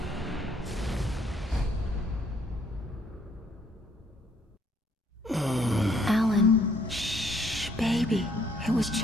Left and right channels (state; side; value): normal; both; correlation 0.66